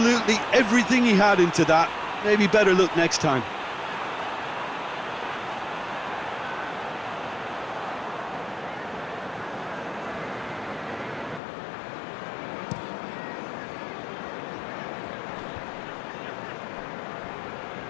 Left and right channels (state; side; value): drops out; right; at 11.4 s